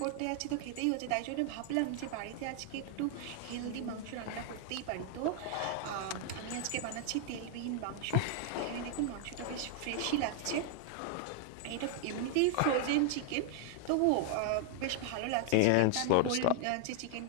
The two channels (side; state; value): both; different; correlation 0.00